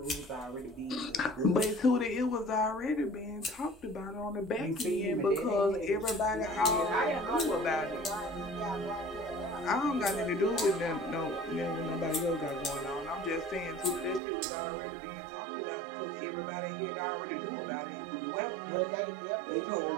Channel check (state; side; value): drops out; left; at 14.2 s